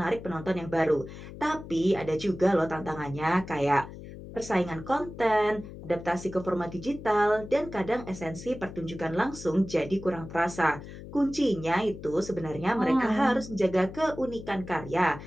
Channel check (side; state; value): left; noise; hum, 13 dB below the sound